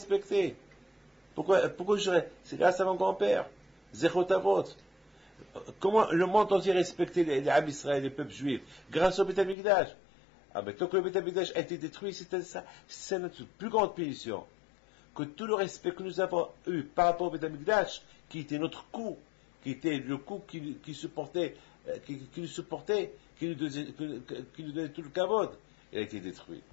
Pourquoi je dirais? C'est grâce à mon grand-père. Zechot Avot. Comment le monde entier respectait les Am Israël, les peuples juifs? Grâce au Beth Amikdash. Ah, mais tant que le Beth Amikdash a été détruit, c'est notre plus grande punition. Que tout le respect que nous avons eu par rapport au Beth Amikdash, qui était notre coup, qui était le coup qui nous supportait, qui nous donnait tout le kavod, il a été détruit.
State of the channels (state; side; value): drops out; right; at 9.6 s